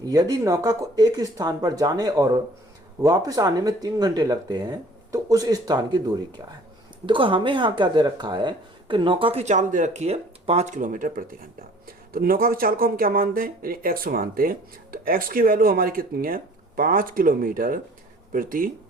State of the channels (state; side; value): normal; both; correlation 0.52